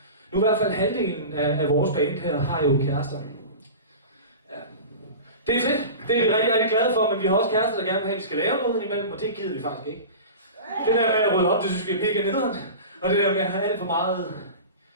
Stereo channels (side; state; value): both; inverted; correlation -0.33